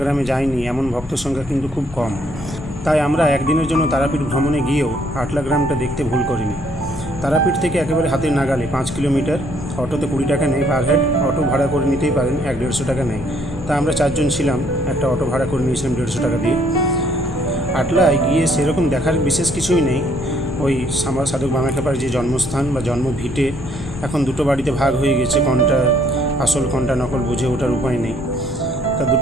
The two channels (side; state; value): both; normal; correlation 0.66